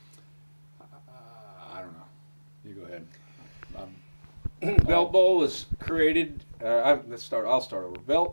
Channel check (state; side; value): inverted; both; correlation -1.00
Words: don't know. You go ahead. Belt Bowl was created. I'll start over.